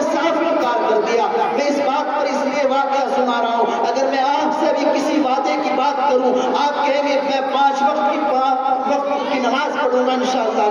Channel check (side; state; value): both; identical; correlation 1.00